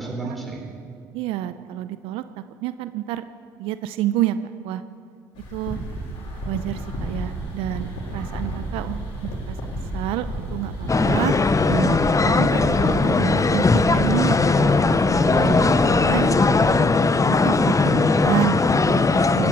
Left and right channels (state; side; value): normal; both; correlation 0.64